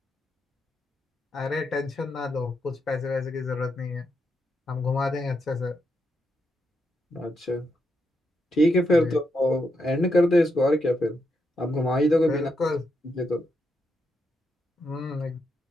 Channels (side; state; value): both; normal; correlation 0.82